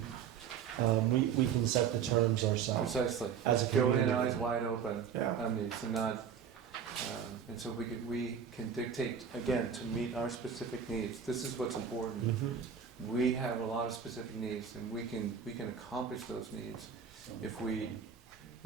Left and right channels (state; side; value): quieter; left; 7.4 dB